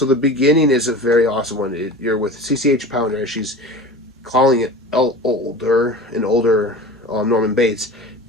the beginning is a very awesome one. You're with CCH Pounder. She's calling it an older Norman Bates,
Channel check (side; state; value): both; normal; correlation 0.35